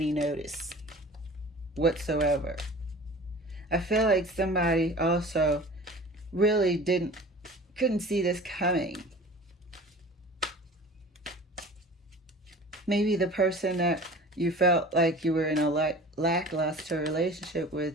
notice whatsoever. I feel like somebody also really couldn't see this coming. Maybe the person that you felt like you were in a lackluster relationship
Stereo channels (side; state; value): both; normal; correlation 0.41